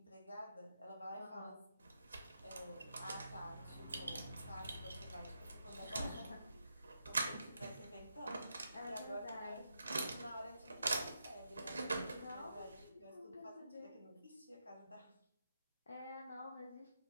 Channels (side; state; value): both; inverted; correlation -0.83